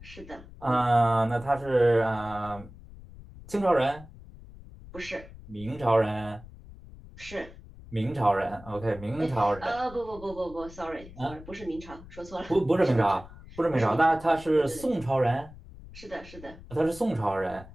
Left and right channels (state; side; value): noise; left; rumble, 18 dB below the sound